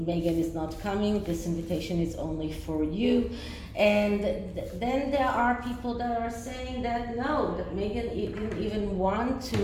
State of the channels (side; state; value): both; identical; correlation 1.00